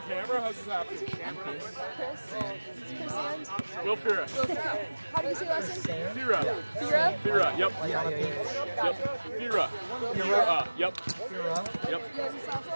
camera? How's this happening? Chris and Will Fira. how do you say last name? Fira. Fira? Fira, yep. Yep. Fira. Fira. Yep. Yep. Ian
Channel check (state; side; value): inverted; both; correlation -1.00